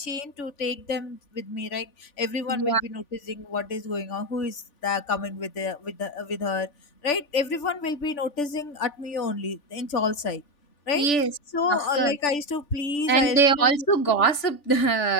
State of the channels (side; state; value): right; late; 3.4 ms